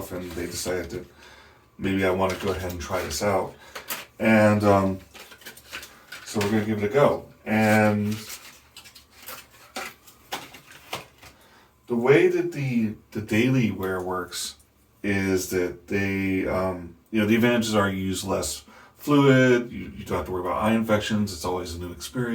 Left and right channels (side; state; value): both; identical; correlation 1.00